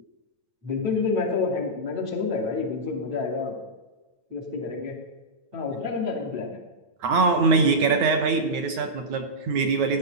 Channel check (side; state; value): left; late; 9.0 ms